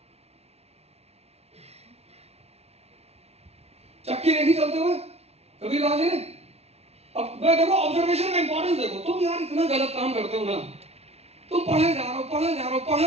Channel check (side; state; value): left; late; 0.30 ms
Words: चक्की देखी चलते हुए कबीरदास जी ने. अब मैं देखो ऑब्जर्वेशन का इंपॉर्टेंस देखो. तुम यार इतना गलत काम करते हो ना, तुम पढ़े जा रहे हो, पढ़े जा रहे हो,